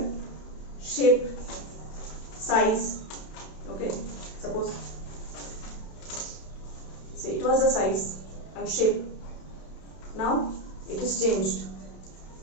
Shape, size. Okay, suppose say it was the size and shape. Now it is changed.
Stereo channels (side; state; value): right; late; 32 ms